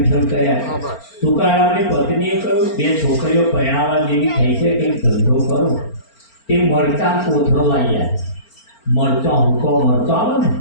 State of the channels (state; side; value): late; right; 4.4 ms